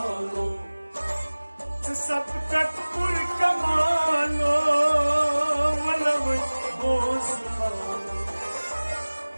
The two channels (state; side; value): inverted; both; correlation -1.00